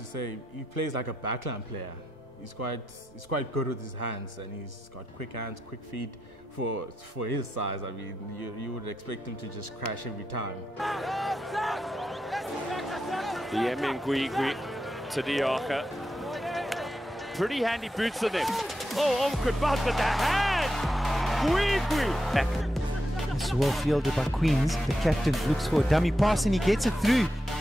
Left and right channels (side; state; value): both; normal; correlation 0.86